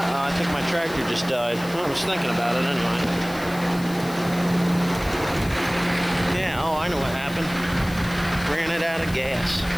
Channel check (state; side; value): noise; left; hiss, 17 dB below the sound